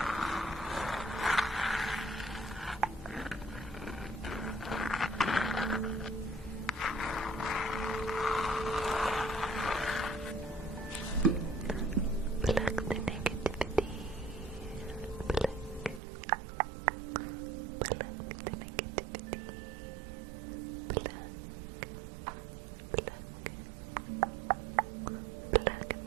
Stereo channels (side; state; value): left; drops out; at 16.0 s